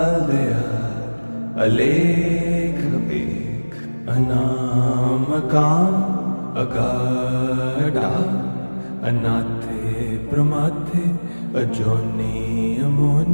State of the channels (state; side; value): inverted; both; correlation -1.00